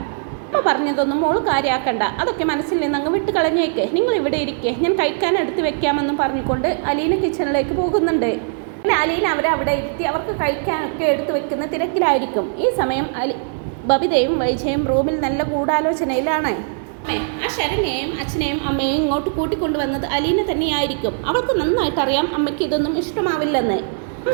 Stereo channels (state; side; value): silent; left; 64 dB below the other